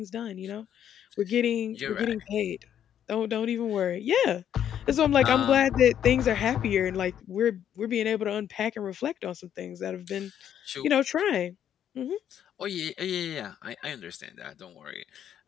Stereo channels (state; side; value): quieter; right; 9.8 dB